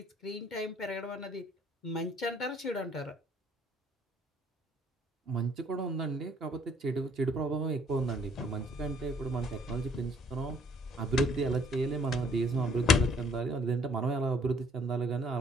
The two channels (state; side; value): normal; both; correlation 0.61